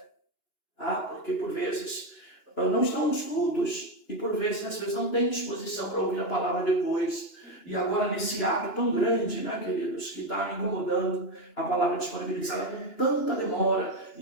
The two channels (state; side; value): late; right; 2.9 ms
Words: tá? Porque por vezes não estão nos cultos e por vezes, às vezes, não têm disposição para ouvir a palavra depois. E agora nesse ato tão grande, né, queridos, que está me incomodando, a palavra disponibilizada com tanta demora,